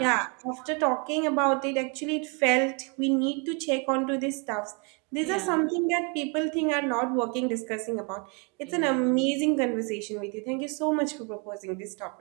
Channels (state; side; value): quieter; left; 33.6 dB